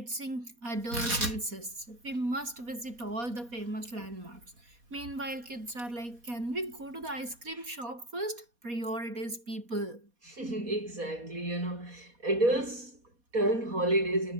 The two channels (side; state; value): left; late; 4.2 ms